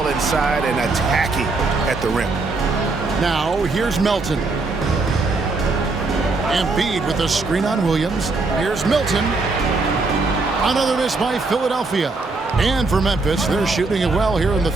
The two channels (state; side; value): quieter; left; 3.6 dB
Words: inside and attacking at the rim. Now, here's Melton. Embiid with a screen on Williams. Here's Milton. Another miss by Philadelphia. And for Memphis, they're shooting it well here in the